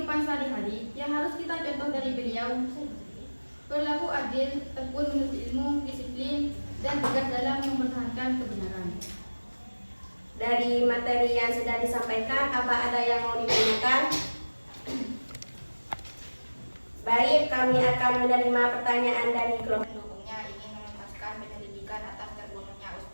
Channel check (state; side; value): inverted; both; correlation -1.00